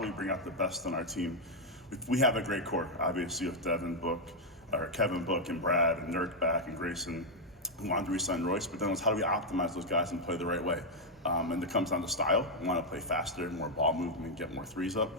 we bring out the best in our team? We have a great core, obviously, with Kevin Book, and Brad, and Nurk back, and Grayson, who wanted to re-sign Royce. But then it was how do we optimize those guys and play the right way? And it comes down to style. We want to play faster, more ball movement, get more threes up.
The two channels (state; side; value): normal; both; correlation 0.00